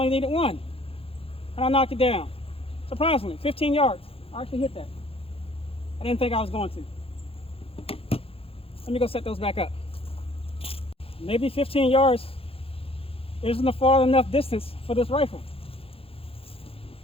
needed 1. And I knocked it down. Surprisingly, 15 yards. I actually hit that. I didn't think I was going to. Let me go set those back up. Maybe 15 yards isn't a far enough distance for this rifle.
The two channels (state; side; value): late; right; 0.27 ms